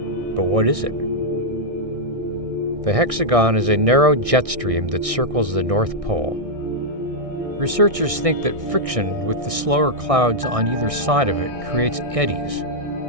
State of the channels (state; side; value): late; left; 1.6 ms